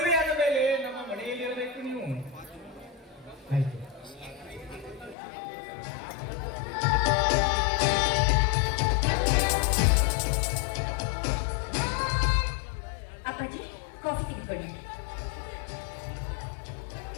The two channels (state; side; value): drops out; right; at 5.2 s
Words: ಮೇಲೆ ನಮ್ಮ ಮನೆಯಲ್ಲಿ ಇರಬೇಕು ನೀವು. ಆಯ್ತು. ಅಪ್ಪಾಜಿ, ಕಾಫಿ ತೆಗೆದುಕೊಳ್ಳಿ.